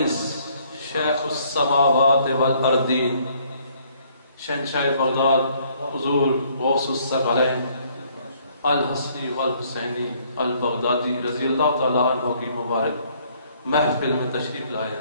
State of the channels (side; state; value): both; inverted; correlation -0.64